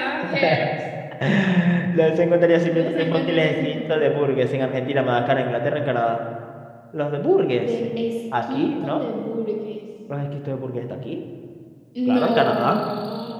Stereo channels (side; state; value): both; identical; correlation 1.00